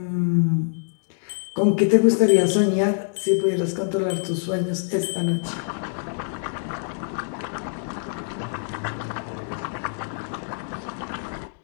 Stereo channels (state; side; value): silent; right; digital silence